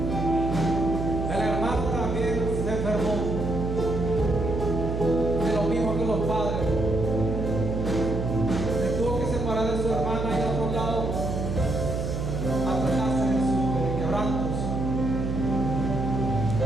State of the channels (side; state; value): right; noise; hum, 2 dB below the sound